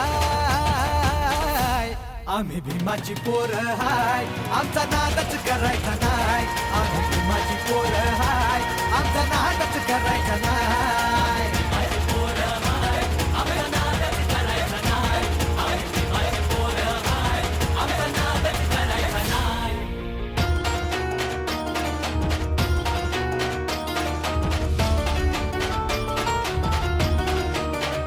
आम्ही भीमाची पोरं हाय, आमचा नादच करायचा नाय. आम्ही भीमाची पोरं हाय, आमचा नादच करायचा नाय.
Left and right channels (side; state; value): both; identical; correlation 1.00